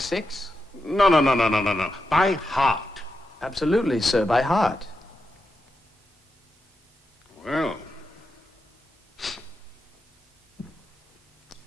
No. By heart. Absolutely, sir, by heart. Well.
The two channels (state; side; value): normal; both; correlation 0.88